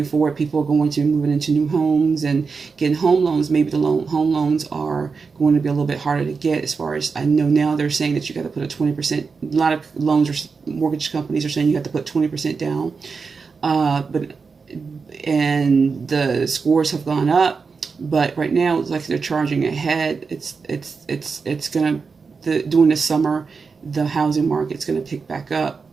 forward. People are going to be moving into new homes and getting home loans. Maybe the home loans are going to be a little bit harder to get. As far as I know now, they're saying that you got to put a 20%. A lot of loans or mortgage companies are saying you have to put 20% down. And the scores have gone up. But right now, it's like they're charging ahead. It's gonna during the summer, the housing market's gonna pick back up,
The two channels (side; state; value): left; quieter; 5.0 dB